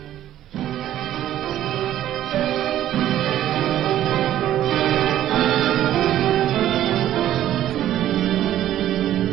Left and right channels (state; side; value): quieter; left; 12.3 dB